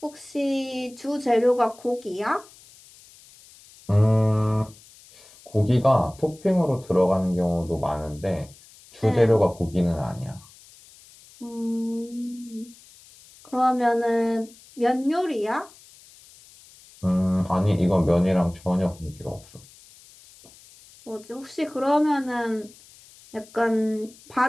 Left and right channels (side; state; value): left; noise; hiss, 24 dB below the sound